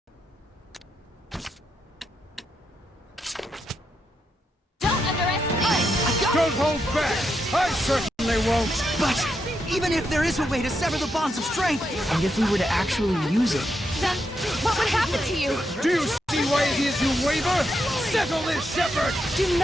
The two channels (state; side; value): normal; both; correlation 0.83